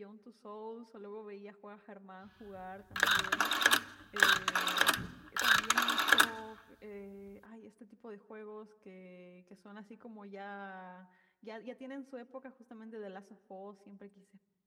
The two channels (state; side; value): identical; both; correlation 1.00